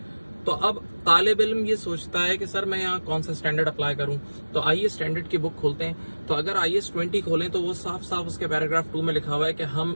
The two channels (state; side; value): inverted; both; correlation -1.00